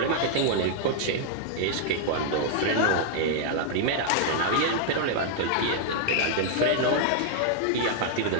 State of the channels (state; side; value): different; both; correlation -0.01